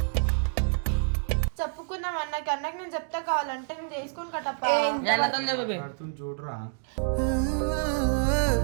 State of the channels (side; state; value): left; silent; digital silence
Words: చెప్పుకున్నాం అన్నకి నేను చెప్తా కావాలంటే నేను చేసుకొని కట్టప్ప చూడరా.